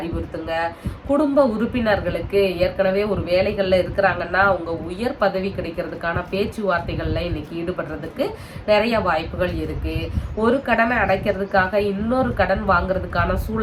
குடும்ப உறுப்பினர்களுக்கு ஏற்கனவே ஒரு வேலைகள்ல இருக்கிறாங்கன்னா அவங்க உயர் பதவி கிடைக்கிறதுக்கான பேச்சுவார்த்தைகள்ல இன்னைக்கு ஈடுபடுறதுக்கு நிறைய வாய்ப்புகள் இருக்கு. ஒரு கடனை அடைக்கிறதுக்காக இன்னொரு கடன் வாங்குறதுக்கான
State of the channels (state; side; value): identical; both; correlation 1.00